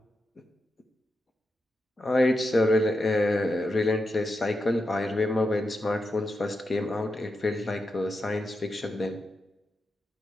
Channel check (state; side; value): normal; both; correlation 0.87